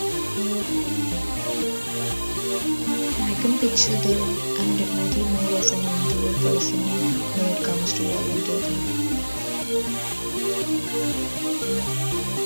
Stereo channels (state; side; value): inverted; both; correlation -1.00